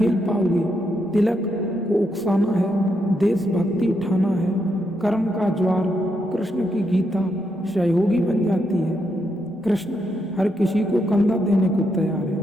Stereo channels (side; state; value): both; normal; correlation 0.80